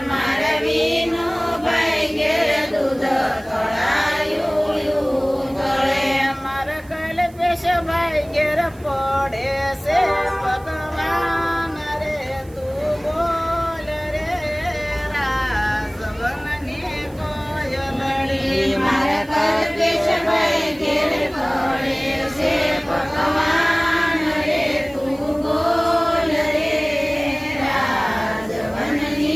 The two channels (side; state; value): right; noise; hiss, 26 dB below the sound